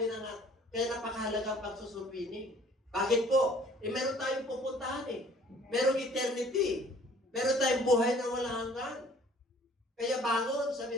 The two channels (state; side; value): normal; both; correlation 0.54